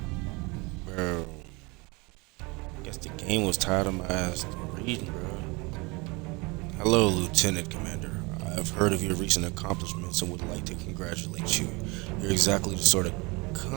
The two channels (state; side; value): quieter; left; 26.6 dB